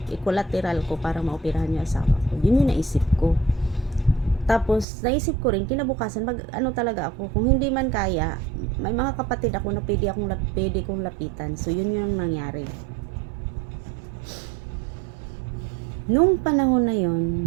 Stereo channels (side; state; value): left; drops out; at 4.9 s